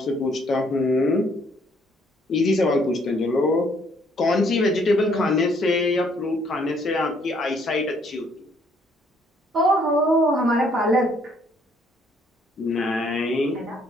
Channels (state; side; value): normal; both; correlation 0.66